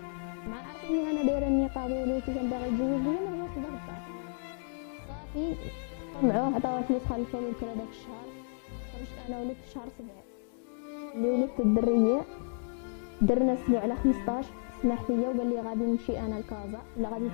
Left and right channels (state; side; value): silent; right; digital silence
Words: مع عارفيني انا دايره النقاب ولوسي كان باغي يتزوج بيا ما رجعش لذاك الدار. صافي قمعوه عطاوه الفلوس خلصوا له الكرا داك الشهر. خرجت انا ولدت في شهر 7 اللي ولدت الدريه، درنا السبوع على 15 سمح فيا وقال لي غادي نمشي انا لكازا ولا غادي